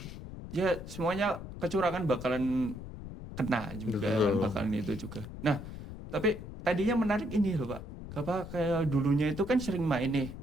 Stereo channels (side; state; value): left; noise; rumble, 11 dB below the sound